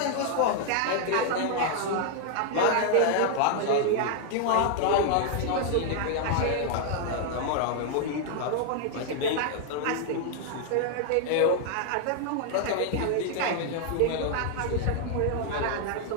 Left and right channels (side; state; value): both; different; correlation 0.00